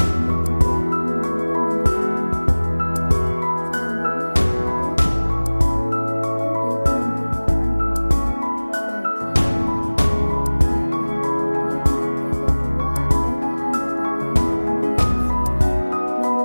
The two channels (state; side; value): inverted; both; correlation -1.00